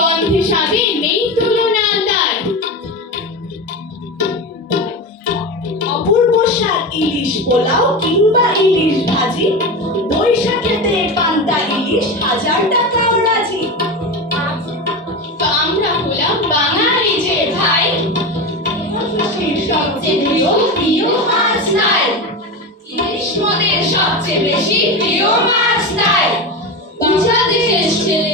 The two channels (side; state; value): both; normal; correlation 0.22